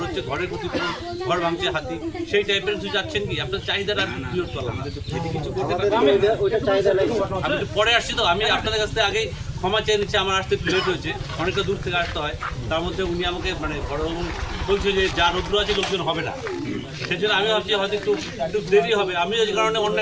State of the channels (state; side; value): identical; both; correlation 1.00